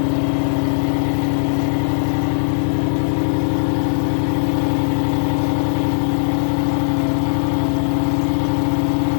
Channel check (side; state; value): right; silent; digital silence